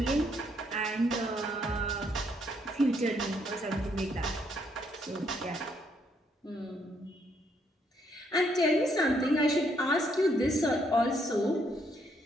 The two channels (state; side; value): normal; both; correlation 0.72